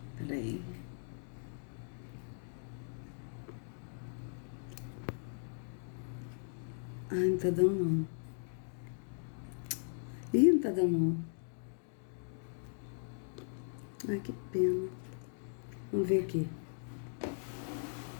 Peraí. Ai, não tá dando não. Ih, não tá dando não. Ai, que pena. Vamos ver aqui.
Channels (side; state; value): right; silent; digital silence